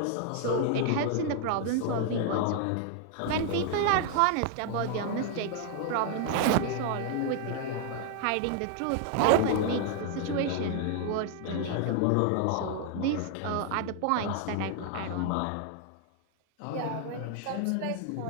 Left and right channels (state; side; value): different; both; correlation 0.00